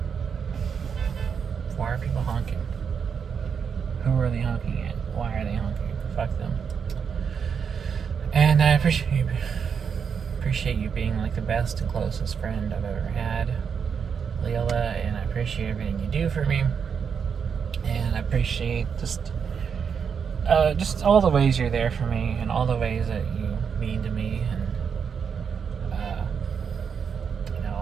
Why are people honking? Who are they honking at? Why are they honking? Fuck them. And I appreciate you being like the best and closest friend I've ever had, Lilla, and I appreciate everything you do for me. And I appreciate just all the ways you're there for me, and all the ways that you mean to me, and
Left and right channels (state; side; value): quieter; left; 6.7 dB